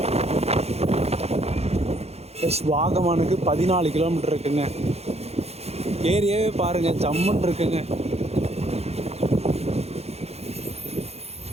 ப்ளஸ் வாகமானுக்கு 14 கிலோமீட்டர் இருக்குங்க. ஏரியாவே பாருங்கள், ஜம்முன்னு இருக்குங்க.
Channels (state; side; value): late; left; 0.30 ms